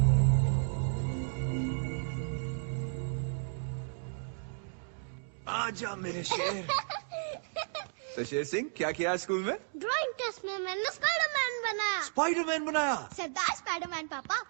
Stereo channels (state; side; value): silent; left; digital silence